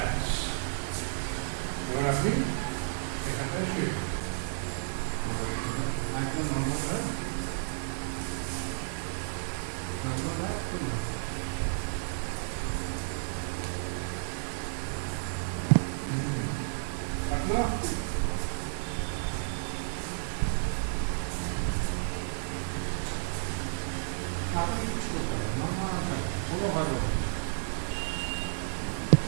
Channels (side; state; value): left; silent; 56 dB below the other